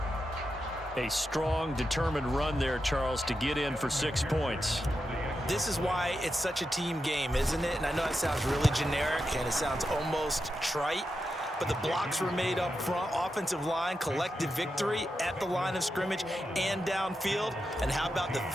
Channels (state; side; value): normal; both; correlation 0.88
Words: A strong, determined run there, Charles, to get in for 6 points. This is why it's such a team game, isn't it? And I know it sounds really generic, and it sounds almost trite, but the blocks were made up front, offensive line, collective victory at the line of scrimmage and downfield. And how about the